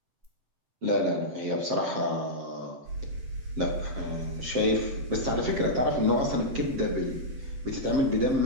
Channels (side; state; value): left; late; 7.5 ms